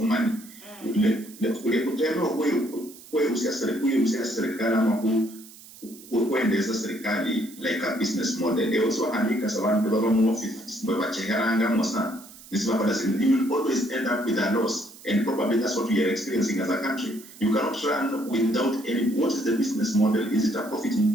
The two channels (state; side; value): noise; right; hiss, 19 dB below the sound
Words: money le kutendo wewe usiasirikali serikali ama kuendeza serikali like a business model also andika sabantu baba mu office baba cheharanga mosa this baba does you will always end up with a loss and probably that's what we are experiencing as a country. You cannot run without any. What is the business model? Is it a